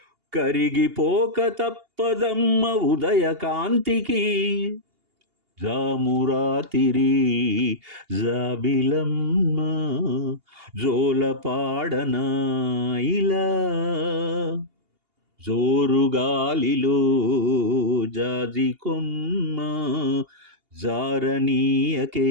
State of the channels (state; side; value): late; left; 2.8 ms